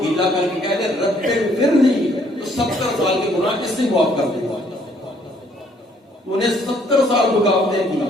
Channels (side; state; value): both; normal; correlation 0.65